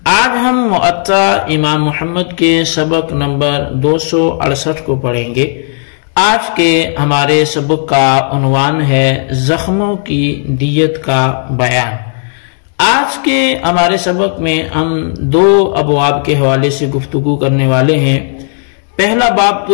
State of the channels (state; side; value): silent; right; digital silence